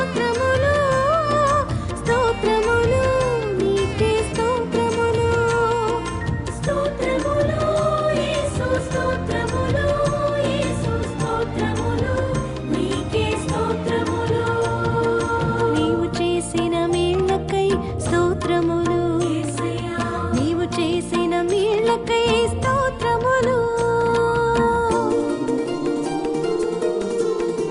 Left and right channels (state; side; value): identical; both; correlation 1.00